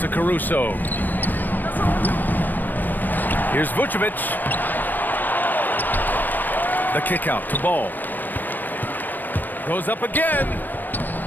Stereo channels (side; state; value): right; late; 0.090 ms